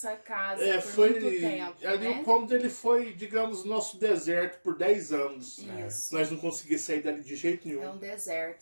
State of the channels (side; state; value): both; inverted; correlation -1.00